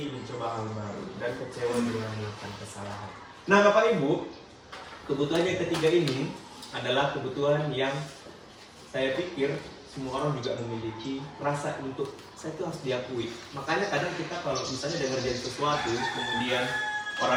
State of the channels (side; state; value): both; identical; correlation 1.00